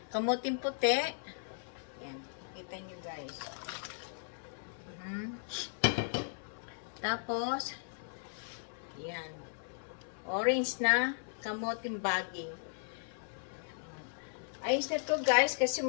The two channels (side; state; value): right; silent; 53 dB below the other